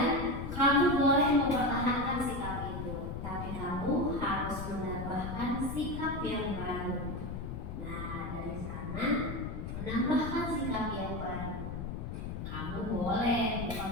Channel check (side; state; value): left; noise; rumble, 6 dB below the sound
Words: kamu boleh mempertahankan sikap itu, tapi kamu harus menambahkan sikap yang baru. Nah, dari sana menambahkan sikap yang baru. Kamu boleh